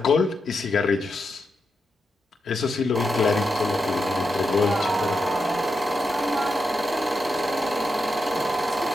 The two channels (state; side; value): normal; both; correlation 0.86